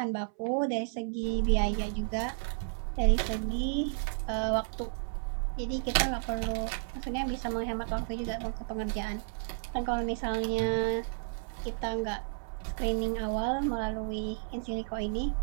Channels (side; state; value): left; silent; 56 dB below the other